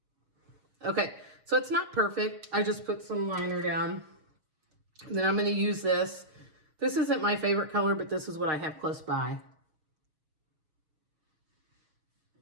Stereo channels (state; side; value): late; left; 6.5 ms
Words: Okay, so it's not perfect. I just put some liner down. And then I'm going to use this. This isn't my favorite color, but this is what I have close by.